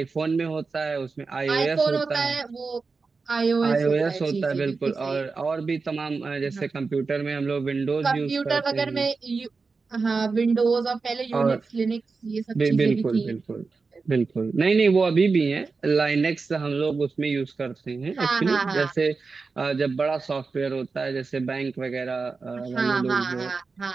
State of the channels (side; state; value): left; quieter; 4.4 dB